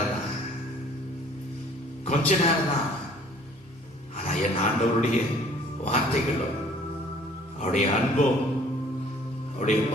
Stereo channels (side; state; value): both; normal; correlation 0.55